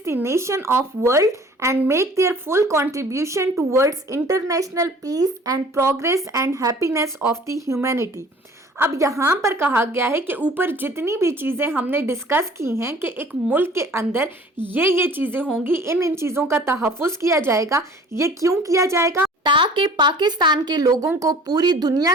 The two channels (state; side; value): normal; both; correlation 0.49